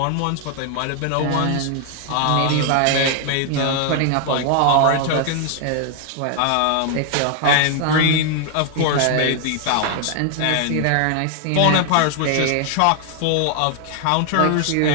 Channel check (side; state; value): both; different; correlation 0.00